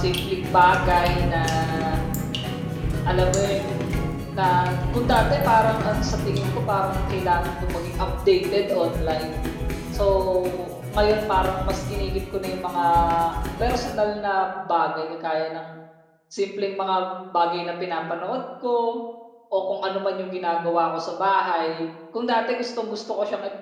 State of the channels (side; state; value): both; identical; correlation 1.00